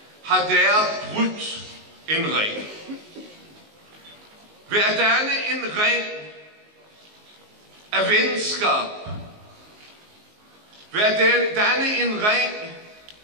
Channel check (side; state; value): left; late; 19 ms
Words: har der brudt en ring. Ved at danne en ring af venskab, ved at danne en ring